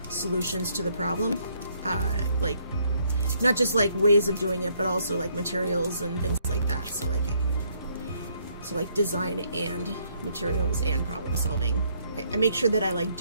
solutions to the problem. Like not just like ways of doing it, but also like materials and things like that. So like design and materials and problem solving. I make sure that I like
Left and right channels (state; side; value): inverted; both; correlation -0.69